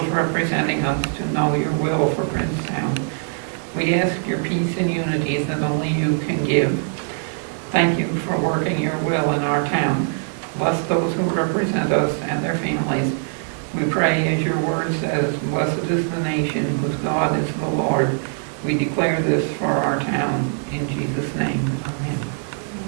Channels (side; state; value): left; silent; 58 dB below the other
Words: representing us to know your will for Princetown. We ask your peace and unity that only you can give. Thank you for working your will in our town. Bless those who represent us and their families. We pray, as your word says, blessed is the nation whose God is the Lord. We declare this for our town. In Jesus' name, amen.